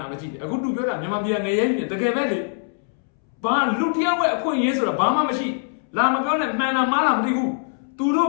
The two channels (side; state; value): right; silent; 64 dB below the other